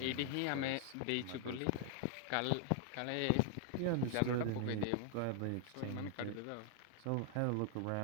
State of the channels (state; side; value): different; both; correlation 0.00